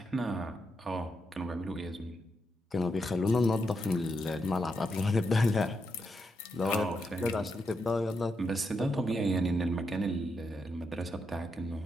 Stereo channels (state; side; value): normal; both; correlation 0.83